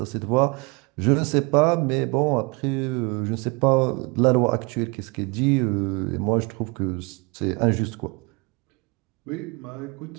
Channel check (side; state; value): left; quieter; 28.3 dB